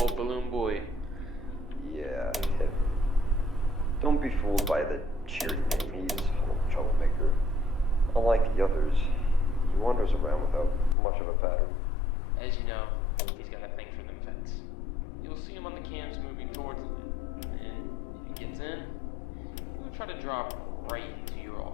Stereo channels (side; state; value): right; drops out; at 11.0 s